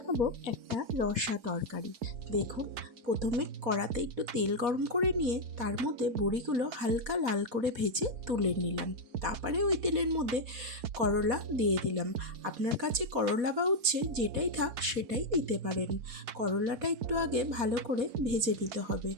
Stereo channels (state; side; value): late; left; 4.1 ms